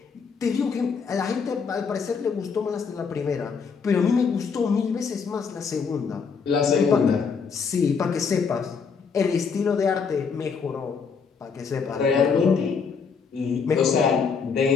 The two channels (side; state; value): right; quieter; 5.7 dB